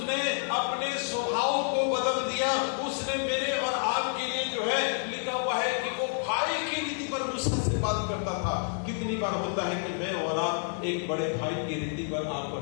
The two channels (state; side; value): silent; right; 57 dB below the other